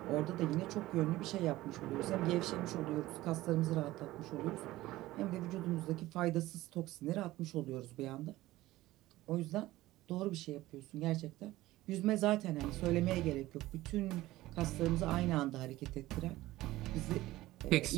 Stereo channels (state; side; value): quieter; left; 17.1 dB